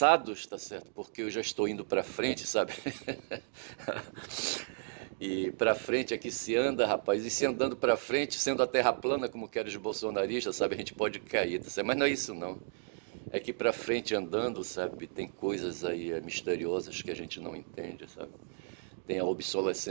tá certo? Porque eu já estou indo para frente, sabe? E para frente é que se anda, rapaz. E se andando para frente, sendo a terra plana, como querem os bolsonaristas, sabe? A gente pode cair, tá certo? Mas não é isso, não. É que para frente andando, sabe? Tem coisas aí misteriosas que a gente não entende, sabe? Tem a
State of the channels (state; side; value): silent; left; digital silence